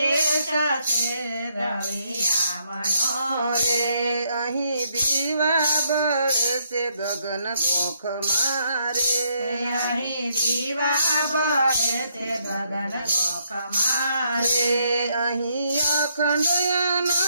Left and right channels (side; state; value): both; inverted; correlation -0.74